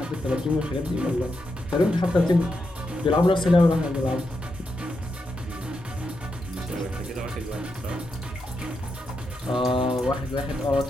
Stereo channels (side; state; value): both; normal; correlation 0.85